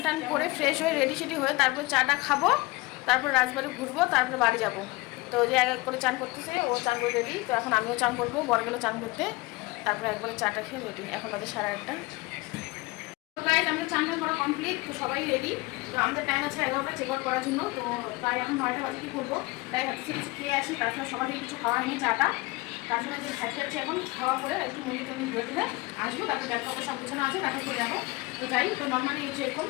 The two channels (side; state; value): right; quieter; 22.7 dB